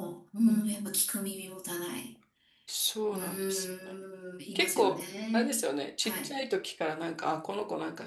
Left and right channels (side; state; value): both; identical; correlation 1.00